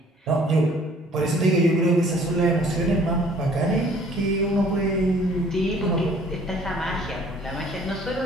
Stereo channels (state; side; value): normal; both; correlation 0.55